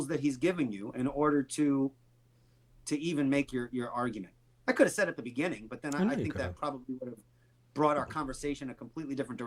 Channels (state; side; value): identical; both; correlation 1.00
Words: that he's given you in order to even make your argument. I could have said at the beginning, but then I think that probably would have brought our conversation a completely different